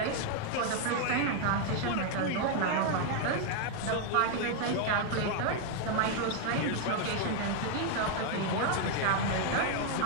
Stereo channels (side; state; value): both; different; correlation 0.00